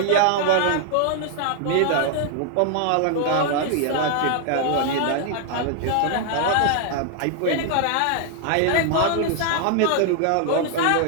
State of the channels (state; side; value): different; both; correlation 0.00